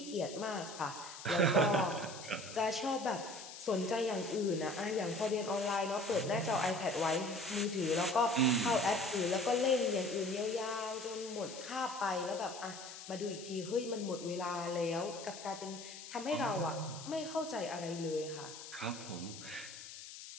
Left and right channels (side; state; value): left; noise; hiss, 12 dB below the sound